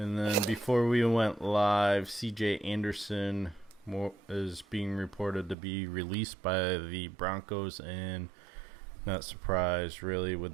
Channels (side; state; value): left; drops out; at 5.6 s